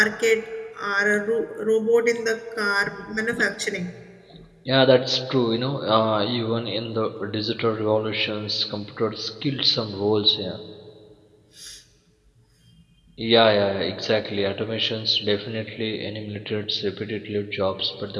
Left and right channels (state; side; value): identical; both; correlation 1.00